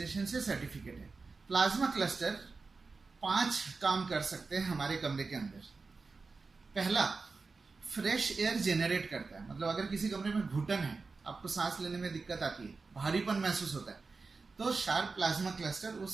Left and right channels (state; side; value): quieter; left; 4.2 dB